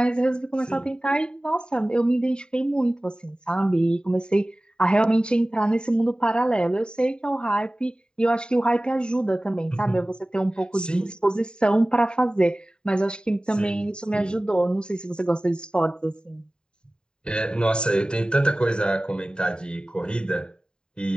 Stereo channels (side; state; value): right; late; 0.048 ms